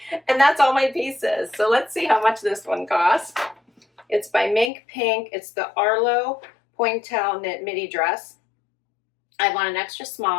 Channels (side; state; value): right; drops out; at 4.7 s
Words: And that's all my pieces. So let's see how much this one costs. It's by Minkpink. It's the Arlo Pointelle knit midi dress. I want an extra